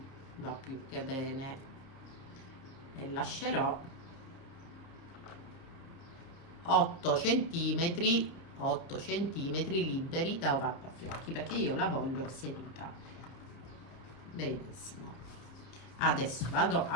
va più che bene e lascerò 8 centimetri liberi da ovattafiocchi perché io la voglio seduta. Benissimo. Adesso vado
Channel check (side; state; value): right; late; 30 ms